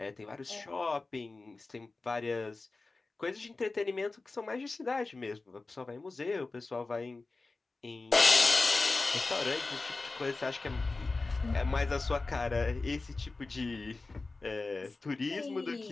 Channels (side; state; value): right; quieter; 3.6 dB